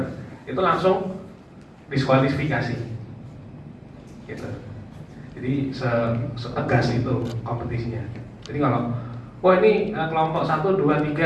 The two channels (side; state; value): both; identical; correlation 1.00